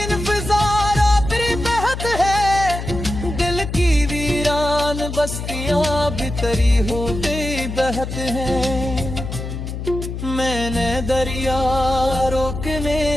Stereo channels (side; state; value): left; noise; hum, 6 dB below the sound